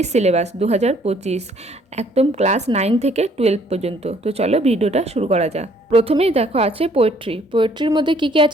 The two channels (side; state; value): both; normal; correlation 0.62